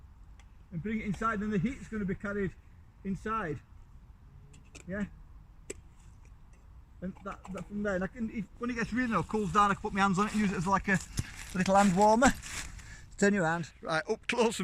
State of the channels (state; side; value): identical; both; correlation 1.00